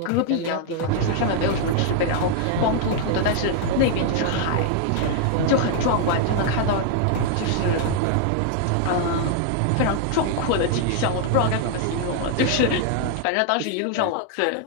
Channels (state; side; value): different; both; correlation 0.00